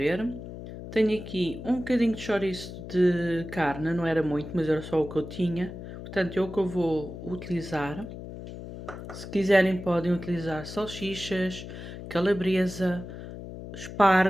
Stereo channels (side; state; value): left; noise; hum, 11 dB below the sound